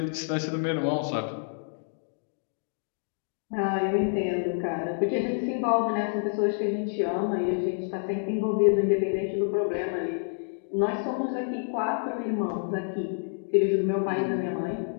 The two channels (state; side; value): silent; right; digital silence